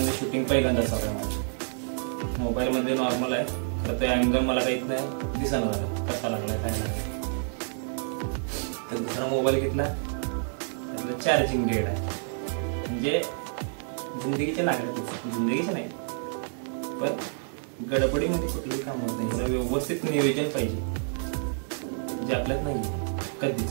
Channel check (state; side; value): silent; left; 59 dB below the other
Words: शूटिंग पहिल्यांदाच हवं आहे माझं. मोबाईलमध्ये नॉर्मल आहे, तर ते अँगल मला काहीच नाही दिसणार झालं कसा लागलाय काय नाही. तर दुसरा मोबाईल घेतला, त्यातलं चार्जिंग डेड आहे, म्हणजे जिंदगीचे लागत, जिंदगीचे नाही पण गडबडीमध्ये कुठलंही काम होत नाही. याला व्यवस्थित नियोजन पाहिजे, जे आपल्यात नाही